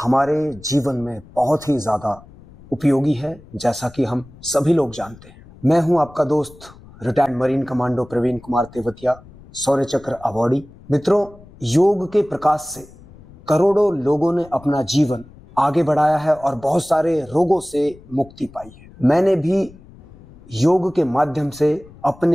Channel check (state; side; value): noise; left; rumble, 22 dB below the sound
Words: जीवन में बहुत ही ज्यादा उपयोगी है, जैसा कि हम सभी लोग जानते हैं। मैं हूं आपका दोस्त retired marine commando Praveen Kumar Tewatia, Shaurya Chakra awardee. मित्रों, योग के प्रकाश से करोड़ों लोगों ने अपना जीवन आगे बढ़ाया है और बहुत सारे रोगों से मुक्ति पाई है। मैंने भी योग के माध्यम से